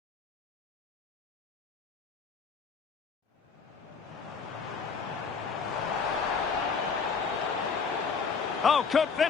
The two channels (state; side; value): quieter; right; 5.5 dB